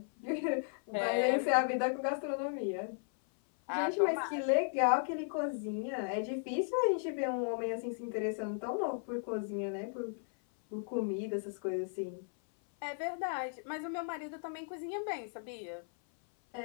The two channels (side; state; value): right; silent; 54 dB below the other